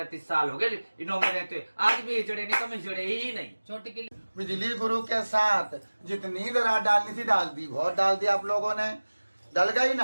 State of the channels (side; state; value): both; inverted; correlation -1.00